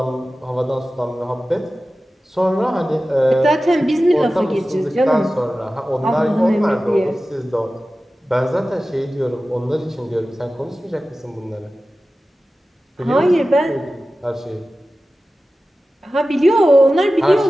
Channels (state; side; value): normal; both; correlation 0.95